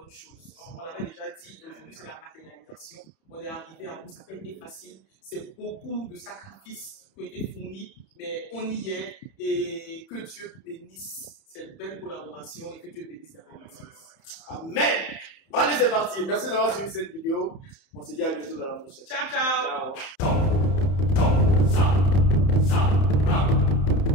choses. On l'avait déjà dit, et aujourd'hui c'est la matérialisation. On est arrivé à bout, ça n'a pas été facile. C'est beaucoup de sacrifices qui ont été fournis, mais on y est, et que Dieu bénisse cette belle collaboration et que Dieu bénisse la relation. Amen. Bon, allez, c'est parti. Merci d'avoir suivi cette vidéo. On se dit à bientôt dans la prochaine. Ciao, ciao. Ciao.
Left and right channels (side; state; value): right; late; 31 ms